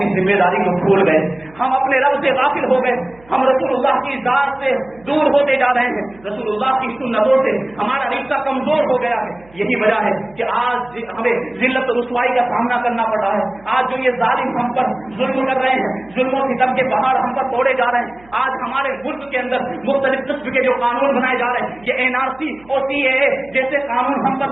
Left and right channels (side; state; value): right; noise; hum, 26 dB below the sound